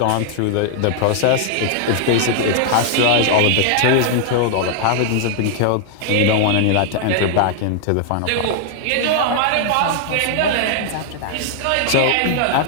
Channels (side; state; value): both; different; correlation 0.00